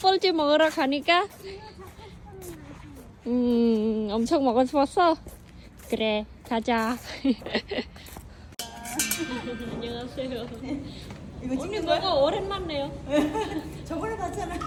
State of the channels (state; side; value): identical; both; correlation 1.00